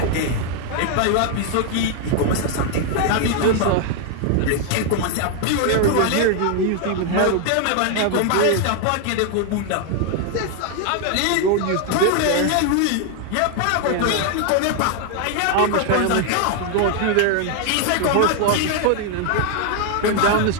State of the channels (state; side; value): different; both; correlation 0.00